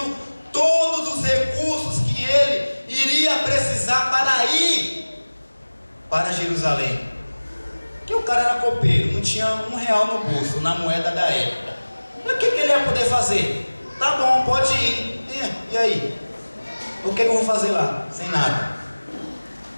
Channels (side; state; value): both; inverted; correlation -1.00